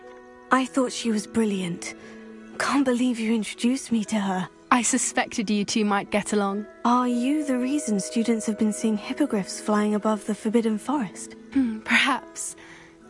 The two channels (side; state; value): both; identical; correlation 1.00